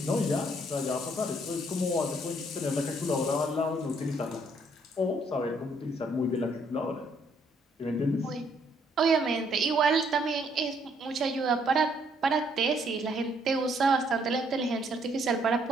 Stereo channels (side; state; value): both; normal; correlation 0.68